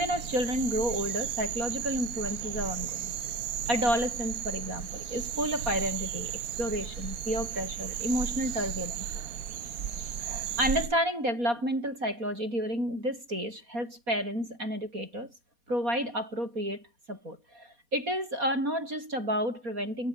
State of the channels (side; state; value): left; late; 4.2 ms